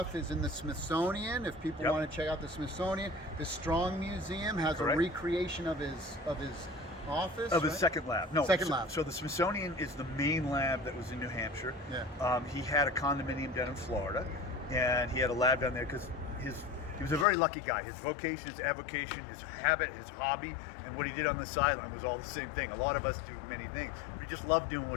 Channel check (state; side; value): drops out; right; at 17.2 s